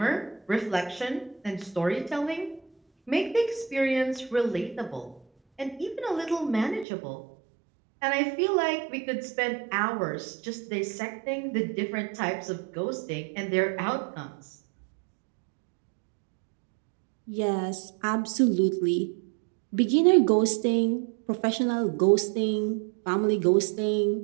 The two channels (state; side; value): drops out; left; at 6.9 s